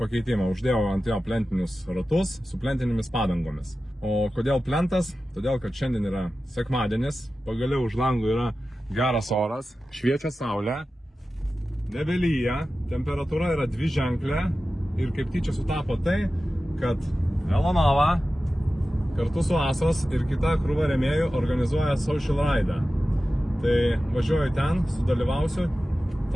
Uždėjau ant jo plentinius ratus su plentinėmis padangomis. O kodėl plentas? Todėl, kad šiandien yra sekmadienis. Pagaliau už langų yra geras oras. Šviečia saulė. Nebelyja. Temperatūra yra dviženklė. Ir kaip tyčia sutapo tai, kad Velanova kartu su Asos ir kita krūva rėmėjų organizuoja social ride. Tai važiuoju ten, sudalyvausiu.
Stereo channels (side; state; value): both; normal; correlation 0.94